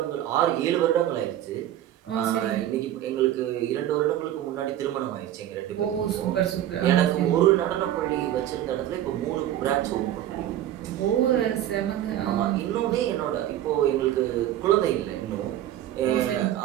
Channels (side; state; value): left; quieter; 12.2 dB